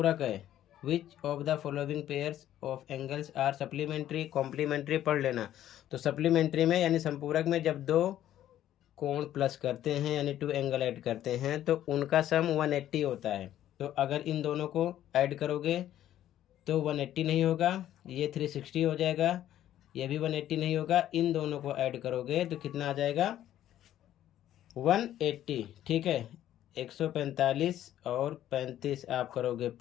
है? Which of the following pairs of angles are supplementary? Complementary पढ़ लेना। तो सप्लीमेंट्री में यानी संपूरक में जब दो कोण प्लस करते हैं यानी 2 एंगल ऐड करते हैं तो उनका सम 180 होता है। तो अगर इन दोनों को ऐड करोगे तो 180 नहीं होगा, ये 360 हो जाएगा, ये भी 180 नहीं होगा, इन दोनों को ऐड करोगे तो कितना आ जाएगा? 180। ठीक है। 145 और 35 आप करोगे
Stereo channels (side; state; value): right; quieter; 12.1 dB